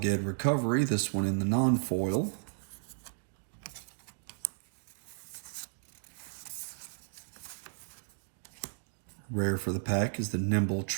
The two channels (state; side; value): silent; left; digital silence